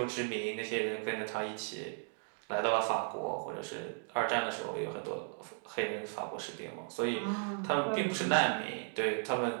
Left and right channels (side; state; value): left; silent; 54 dB below the other